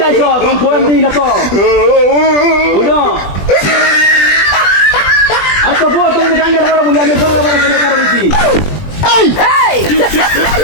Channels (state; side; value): late; right; 20 ms